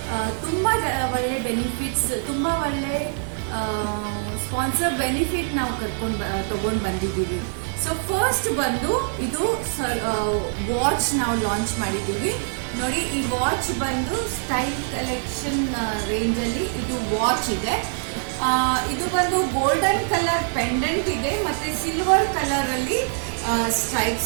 ತುಂಬ ಒಳ್ಳೆ ಬೆನಿಫಿಟ್ಸ್, ತುಂಬ ಒಳ್ಳೆ ಸ್ಪಾನ್ಸರ್ ಬೆನಿಫಿಟ್ ನಾವು ತಗೊಂಡು ಬಂದಿದ್ದೀವಿ. ಸೊ ಫಸ್ಟ್ ಬಂದು ಇದು ವಾಚ್ ನಾವು ಲಾಂಚ್ ಮಾಡಿದ್ದೀವಿ. ನೋಡಿ, ಈ ವಾಚ್ ಬಂದು ಸ್ಟೈಲ್ ಕಲೆಕ್ಷನ್ ರೇಂಜಲ್ಲಿ ಇದು ವಾಚ್ ಇದೆ. ಇದು ಬಂದು ಗೋಲ್ಡನ್ ಕಲರ್ ಪೆಂಡೆಂಟ್ ಇದೆ ಮತ್ತೆ ಸಿಲ್ವರ್ ಕಲರ್ ಅಲ್ಲಿ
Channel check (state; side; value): silent; left; digital silence